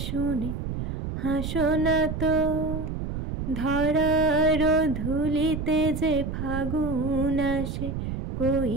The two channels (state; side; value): noise; right; rumble, 4 dB below the sound